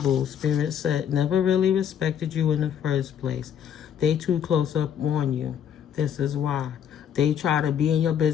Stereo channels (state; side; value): quieter; right; 8.8 dB